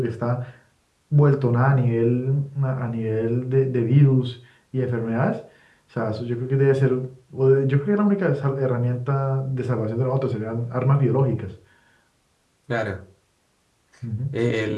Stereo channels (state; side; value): identical; both; correlation 1.00